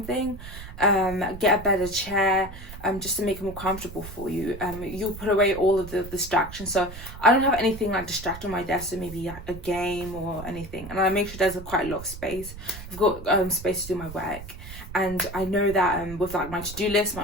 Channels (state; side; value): noise; right; rumble, 13 dB below the sound